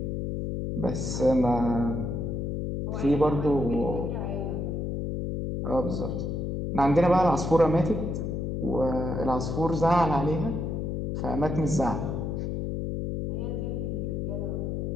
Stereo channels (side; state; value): left; noise; hum, 2 dB below the sound